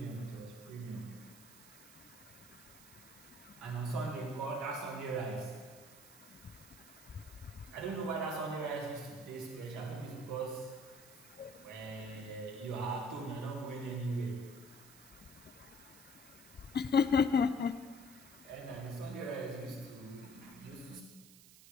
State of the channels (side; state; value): right; noise; hiss, 19 dB below the sound